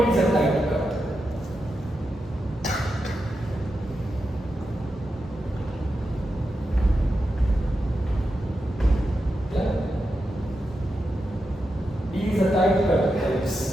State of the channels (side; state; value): both; normal; correlation 0.88